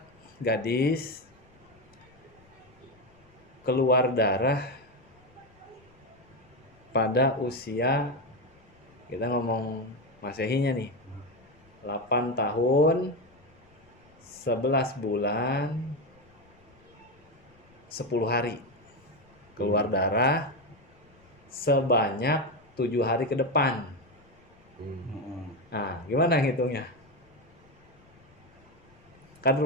gadis keluar darah pada usia, kita ngomong Masehinya nih, 8 tahun 11 bulan 10 hari keluar darah sebanyak 7 hari ke depan. Nah, gimana ngitungnya? Kan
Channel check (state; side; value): noise; left; rumble, 29 dB below the sound